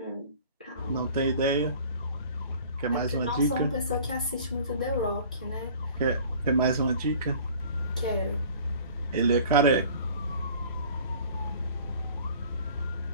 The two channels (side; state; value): both; inverted; correlation -0.47